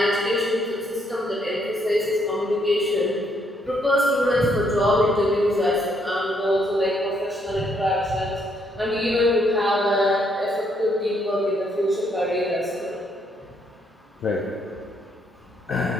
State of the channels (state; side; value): normal; both; correlation 0.72